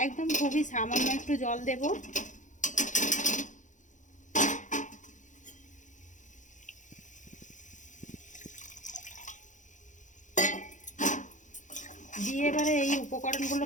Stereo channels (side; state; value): right; late; 0.36 ms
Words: একদম খুবই সামান্য একটু জল দেব। দিয়ে এবারে এই